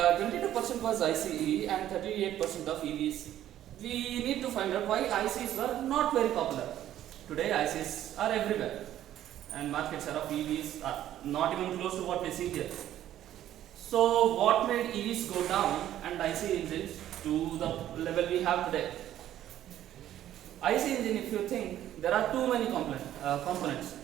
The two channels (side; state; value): left; quieter; 12.2 dB